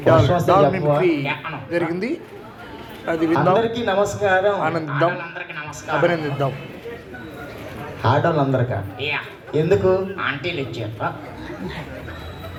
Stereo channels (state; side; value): identical; both; correlation 1.00